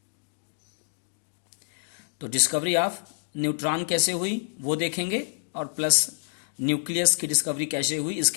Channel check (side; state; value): right; silent; digital silence